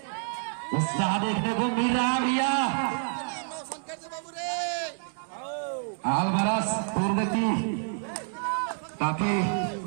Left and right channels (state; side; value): silent; left; 59 dB below the other